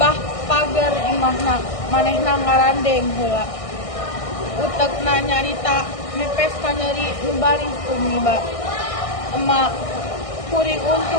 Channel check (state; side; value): late; right; 1.6 ms